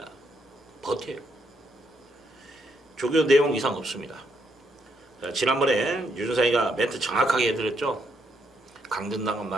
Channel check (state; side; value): normal; both; correlation 0.76